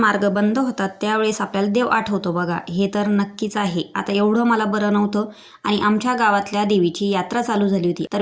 बंद होतात त्यावेळेस आपल्याला देव आठवतो बघा, हे तर नक्कीच आहे. आता एवढं मला बरं नव्हतं आणि आमच्या गावातल्या देवीची यात्रा चालू झाली होती. तर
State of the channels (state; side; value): identical; both; correlation 1.00